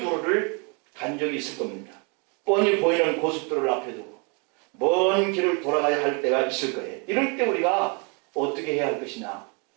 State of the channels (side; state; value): left; quieter; 33.9 dB